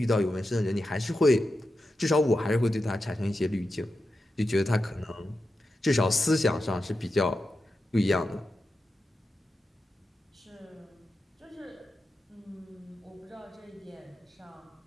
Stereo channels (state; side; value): normal; both; correlation 0.90